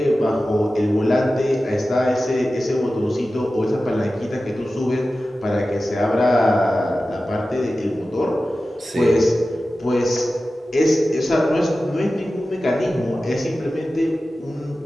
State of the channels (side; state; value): both; normal; correlation 0.94